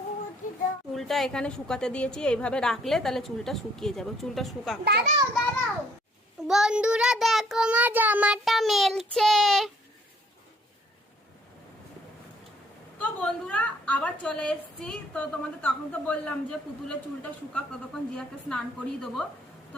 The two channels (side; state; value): both; normal; correlation 0.63